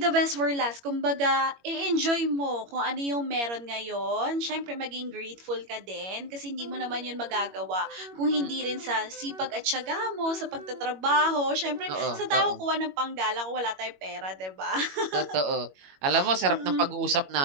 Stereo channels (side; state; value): left; late; 21 ms